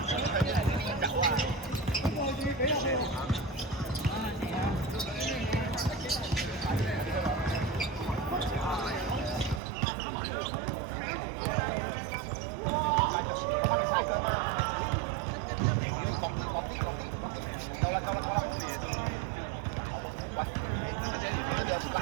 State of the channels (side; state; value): left; drops out; at 9.6 s